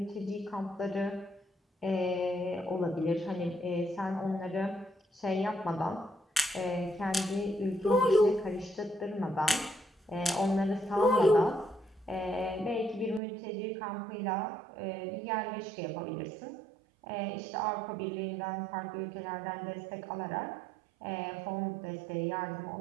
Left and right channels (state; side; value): drops out; left; at 13.2 s